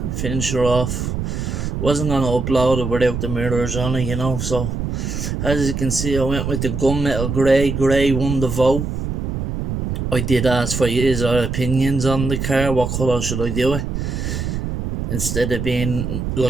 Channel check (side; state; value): right; noise; rumble, 3 dB below the sound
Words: finish her off. Wasn't gonna upload it without the mirrors on it, you know. So as you can see, I went with the gunmetal grey. Grey won the vote. I did ask for his opinions on the car. What colour should I do it? Instead of being